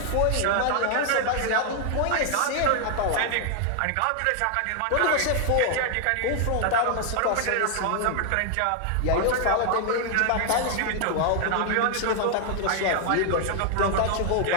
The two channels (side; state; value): both; different; correlation 0.00